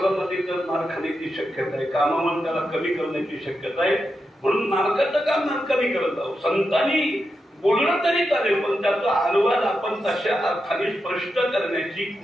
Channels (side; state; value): both; normal; correlation 0.87